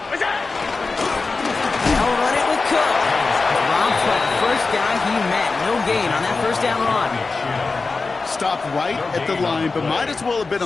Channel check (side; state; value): right; quieter; 4.0 dB